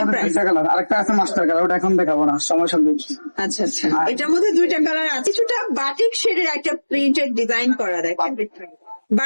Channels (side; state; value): both; inverted; correlation -1.00